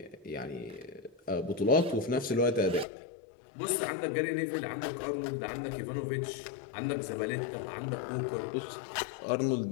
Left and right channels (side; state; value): right; drops out; at 2.9 s